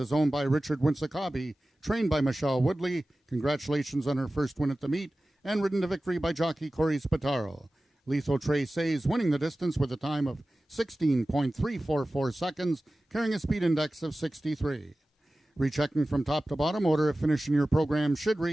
owned by Richard Winsakabi, trained by Michelle Woodley. Congratulations on her first win at the meet, and ridden to victory by jockey Corey Spataro. Lethal Traces winning the distance with a time of 16.344 seconds, carrying a speed index of 63. Rechecking from top to bottom, order of finish in your program should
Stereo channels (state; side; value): normal; both; correlation 0.96